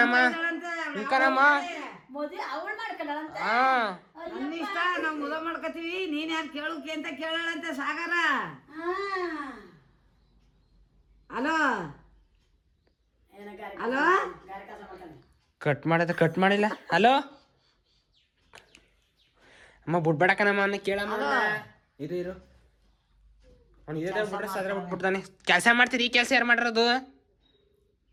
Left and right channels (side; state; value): both; identical; correlation 1.00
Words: ಕಣಮ್ಮ. ಮದುವೆ ಅವಳು ಮಾಡ್ಕೊಂಡಳಂತ. ನನ್ನ ಇಷ್ಟ, ನಾವು ಮದುವೆ ಮಾಡ್ಕೊತೀವಿ. ನೀನ್ ಯಾರು ಕೇಳೋಕೆ ಅಂತ ಕೇಳಳಂತೆ ಸಾಗರ. ಹಲೋ ಹಲೋ ಕಟ್ ಮಾಡಿಲ್ಲ. ಹಲೋ ಅಮ್ಮ ಬಿಡ್ಬೇಡ ಕಣಮ್ಮ, ಅವನ್ನ ಕೇಳಮ್ಮ. ಇರು ಅವ್ನು ಇದೇ ಬಿಟ್ರೆ ಸದ್ರ ಬಿಟ್ಬಿಡ್ತಾನೆ. ಕೆಲಸ ಮಾಡ್ತೀರಿ, ಈ ಕೆಲಸ ಯಾರು ಮಾಡಿರೋದು?